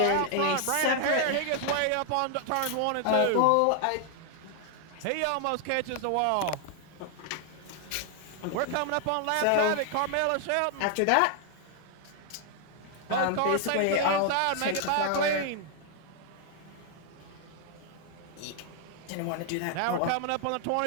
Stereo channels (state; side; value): different; both; correlation 0.00